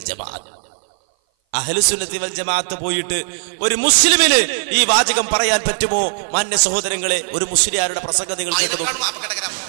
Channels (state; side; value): silent; left; 58 dB below the other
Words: ജമാഅത്ത്. അഹ്ലുസുന്നത്തി വൽ ജമാഅത്ത് പോയിട്ട് ഒരു മുസ്ലിമിന് ഈ വാചകം പറയാൻ പറ്റുമോ? മാന്യ സഹോദരങ്ങളെ, ഒരു മുസ്ലിയാരുടെ പ്രസംഗം നിങ്ങൾ കേട്ടു.